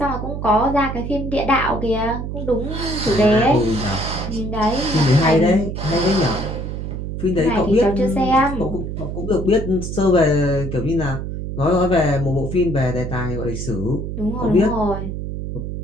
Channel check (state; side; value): noise; right; hum, 5 dB below the sound